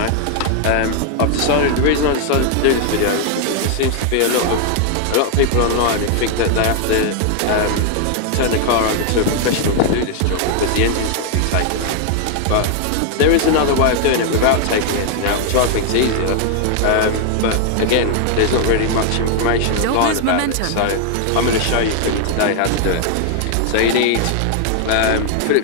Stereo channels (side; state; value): both; different; correlation 0.00